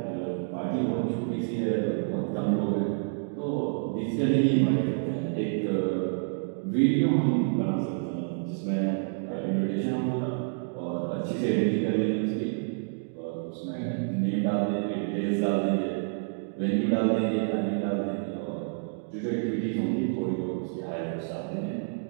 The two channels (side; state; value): left; silent; digital silence